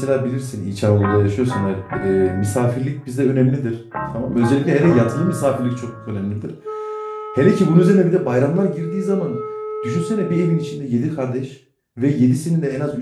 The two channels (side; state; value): both; identical; correlation 1.00